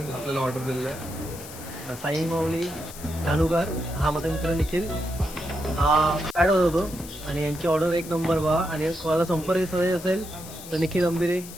आपल्याला ऑर्डर दिलेलं आहे. साई माऊली धानुकर हा माझा मित्र निखिल हा ॲड होत होतो आणि यांची ऑर्डर एक नंबर बा. आणि कोणाला संपर्क साधायचा असेल तर निखिल अंबिरे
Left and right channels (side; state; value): left; noise; hiss, 14 dB below the sound